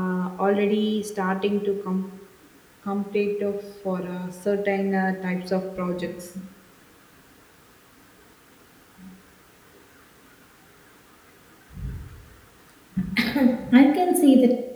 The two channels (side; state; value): both; identical; correlation 1.00